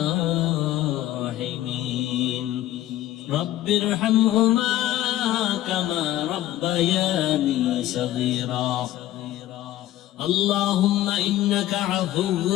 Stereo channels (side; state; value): right; quieter; 14.1 dB